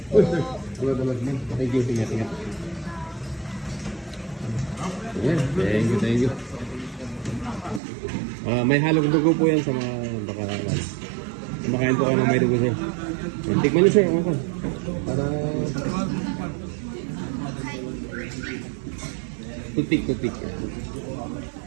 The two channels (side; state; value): left; drops out; at 7.8 s